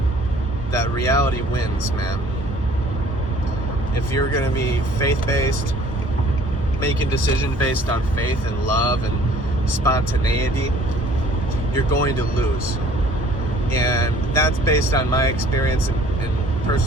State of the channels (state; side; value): normal; both; correlation 0.54